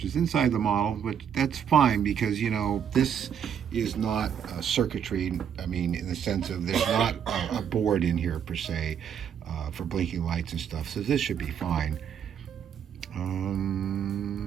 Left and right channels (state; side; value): quieter; left; 8.3 dB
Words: is inside the model, but that's fine because, this is not circuitry. I mean, in the sense of there's not a board in here per se for blinking lights and stuff. So this should be fine.